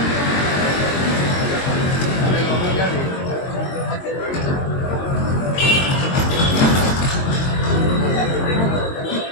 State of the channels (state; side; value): late; right; 22 ms